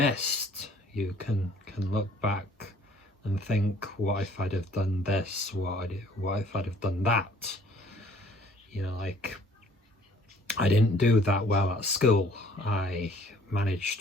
You can look back and think, what if I'd have done this? What if I'd have done that? Like, I didn't do that well at school. I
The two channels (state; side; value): normal; both; correlation 0.57